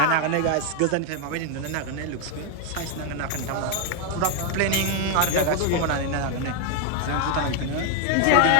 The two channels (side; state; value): both; different; correlation 0.00